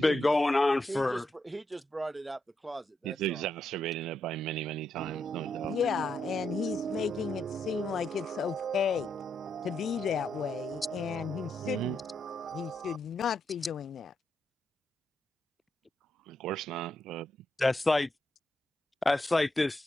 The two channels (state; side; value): normal; both; correlation 0.81